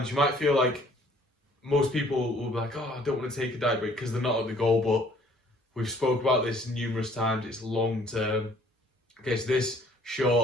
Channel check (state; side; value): normal; both; correlation 0.58